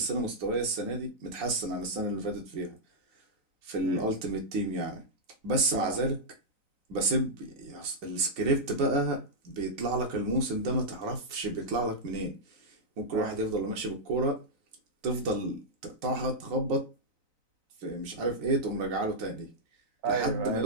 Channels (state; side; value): late; left; 3.9 ms